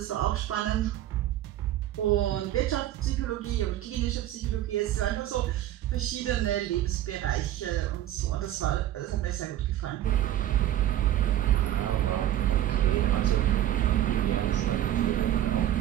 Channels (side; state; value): left; quieter; 12.6 dB